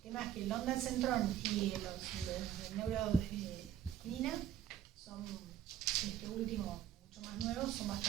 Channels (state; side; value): quieter; left; 10.3 dB